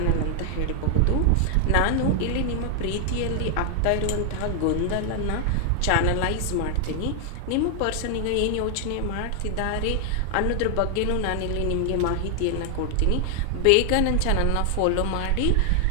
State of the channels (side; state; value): both; different; correlation 0.00